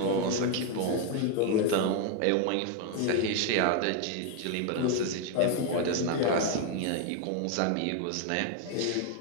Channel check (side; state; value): both; different; correlation 0.01